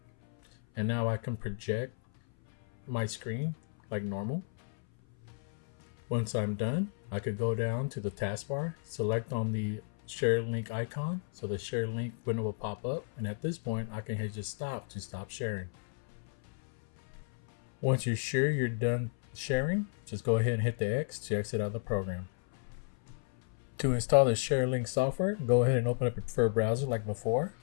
And now I can project my screen like normal. Once I'm done, I could go down to the taskbar, select on the Sharelink icon, so the Sharelink window will pop up. And at this point, I can hit just stop to stop sharing. Once you're sure you're done sharing, just go ahead and hit the X to exit out of the program. To install the Sharelink software, go ahead and open up your preferred browser like before.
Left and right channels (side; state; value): right; silent; 56 dB below the other